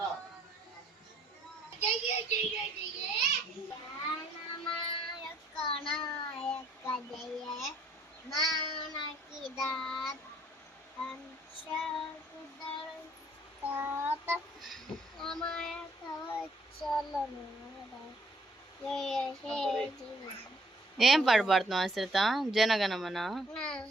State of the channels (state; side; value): normal; both; correlation 0.64